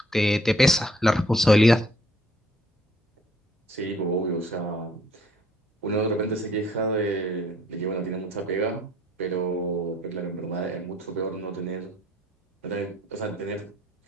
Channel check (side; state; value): both; normal; correlation 0.61